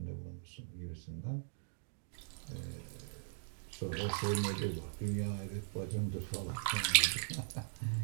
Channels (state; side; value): silent; left; digital silence